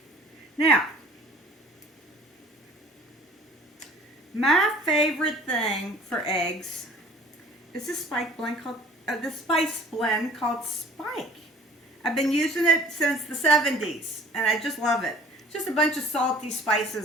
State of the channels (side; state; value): both; normal; correlation 0.50